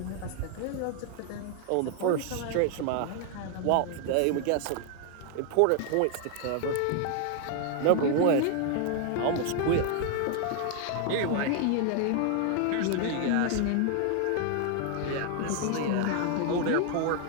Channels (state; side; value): different; both; correlation 0.00